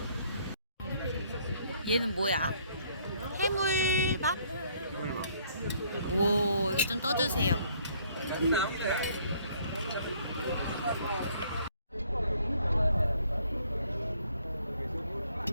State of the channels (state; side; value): inverted; both; correlation -0.63